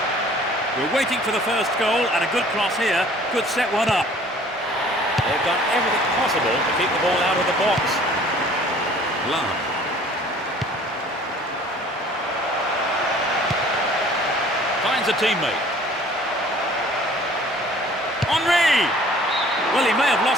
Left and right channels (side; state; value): both; normal; correlation 0.52